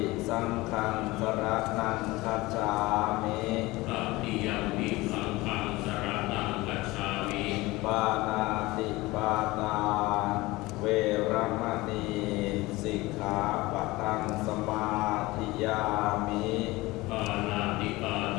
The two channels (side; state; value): right; quieter; 20.7 dB